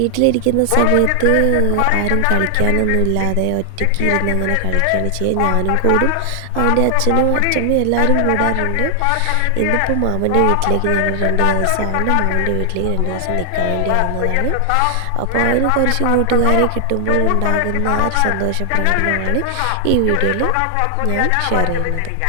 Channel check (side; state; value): both; different; correlation 0.00